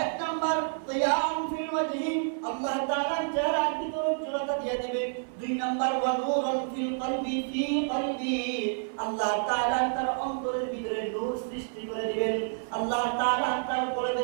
1 নাম্বার জিয়ান ফিল ওয়াজহি, আল্লাহ তাআলা চেহারার ভিতরে উজ্জ্বলতা দিয়ে দিবেন। 2 নাম্বার ওয়া নূরুন ফিল কলবি ফি কলবি, আল্লাহ তাআলা তার অন্তরের ভিতরে নূর সৃষ্টি করে দিবেন, আল্লাহ তাআলা তার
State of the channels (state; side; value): silent; left; 59 dB below the other